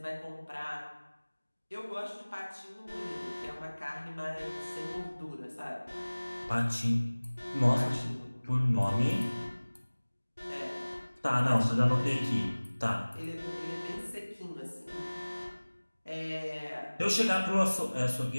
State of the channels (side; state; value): both; inverted; correlation -1.00